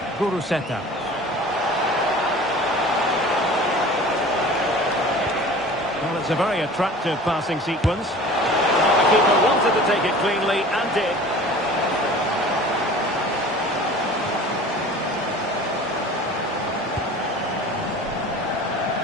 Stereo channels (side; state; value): both; normal; correlation 0.42